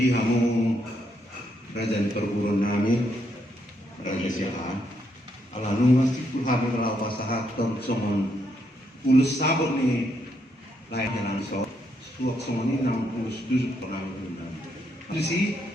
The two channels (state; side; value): normal; both; correlation 0.77